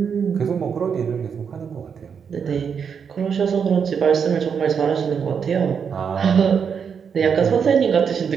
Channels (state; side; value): quieter; left; 6.8 dB